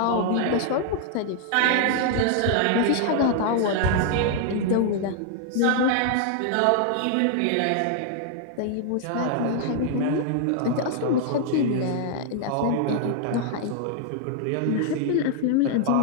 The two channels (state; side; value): different; both; correlation 0.00